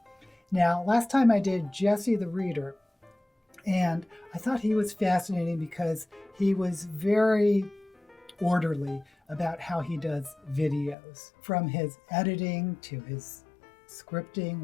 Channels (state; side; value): drops out; right; at 11.0 s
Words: Now, last time I did Jesse the Reader, and I thought he was fascinating because he was very orderly about how he does videos, from his editing to his scripting